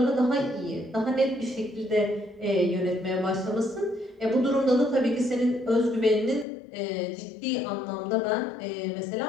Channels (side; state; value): right; drops out; at 6.5 s